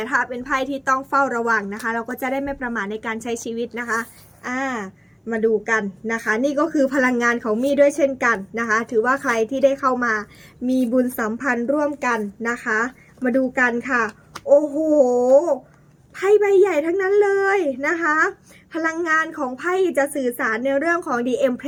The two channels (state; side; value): identical; both; correlation 1.00